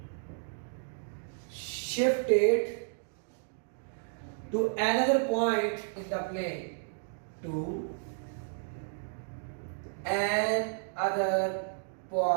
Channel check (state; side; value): silent; left; digital silence